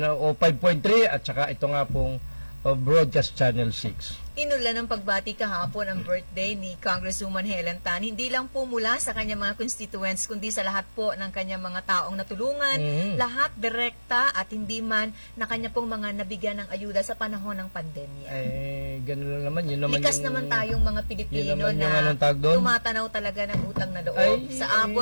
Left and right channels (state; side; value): inverted; both; correlation -1.00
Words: at saka ito nga pong Broadcast Channel 6. Inulan ng pagbati kahapon ang birthday ni Congresswoman Helen Tan, hindi lang po mula sa kanyang mga constituents, kundi sa lahat po ng kanyang mga taong natulungan, lahat direkta at hindi man na kanya pong mga nabigyan ng ayuda sa panahon ng pandemya. Ganun lang naman. Yun naman likas naman tayong mga Pilipino na tumatanaw talaga ng utang na loob. Sa